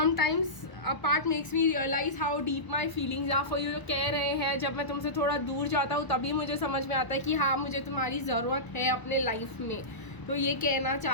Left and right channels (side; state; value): right; late; 1.0 ms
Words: a part makes me realise how deep my feelings are for you. कह रहे हैं जब मैं तुमसे थोड़ा दूर जाता हूँ तभी मुझे समझ में आता है कि हाँ मुझे तुम्हारी ज़रूरत है अपने लाइफ में। तो ये कहना